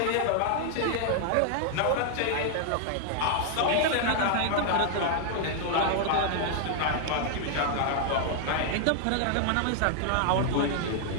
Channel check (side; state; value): both; different; correlation 0.00